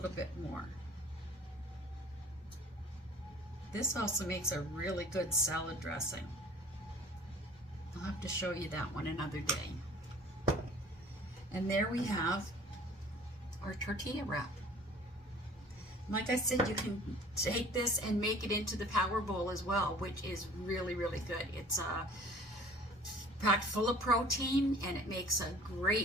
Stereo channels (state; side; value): normal; both; correlation 0.50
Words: bit more. This also makes a really good salad dressing. I'll have to show you that one another day. And there we have our tortilla wrap. Like I said, you can take this and make it into the power bowl as well, which is really, really good. It's packed full of protein and it makes a